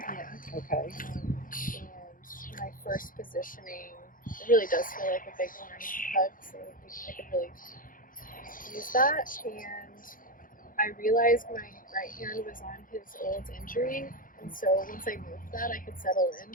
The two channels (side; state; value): right; late; 0.40 ms